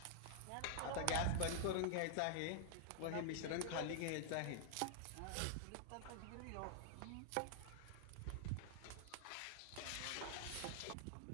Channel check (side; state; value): both; different; correlation 0.00